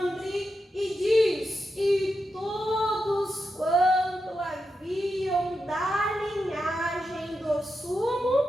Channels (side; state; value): both; normal; correlation 0.87